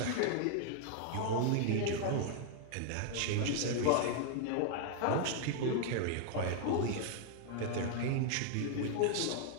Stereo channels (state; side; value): different; both; correlation 0.00